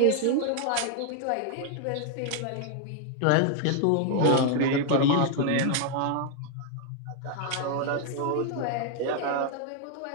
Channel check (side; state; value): both; different; correlation 0.00